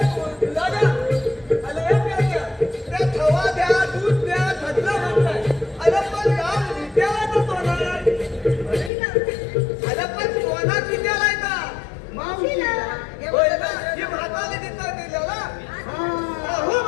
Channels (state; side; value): drops out; right; at 8.9 s